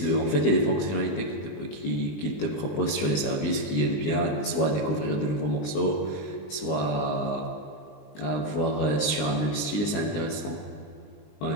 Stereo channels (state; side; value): late; right; 20 ms